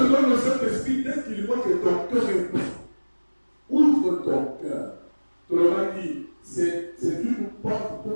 donne le Saint-Esprit dès qu'il voit que ton cœur est prêt. Ouvre ton cœur. Tu l'auras dit. C'est une porte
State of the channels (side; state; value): both; inverted; correlation -1.00